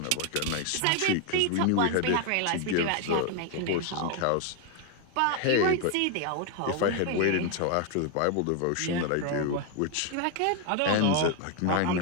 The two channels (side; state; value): both; different; correlation 0.01